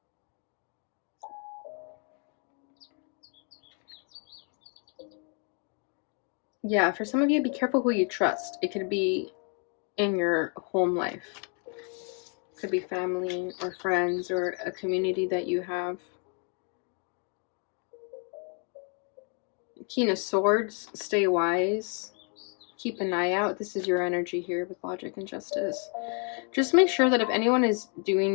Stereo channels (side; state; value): right; quieter; 39.6 dB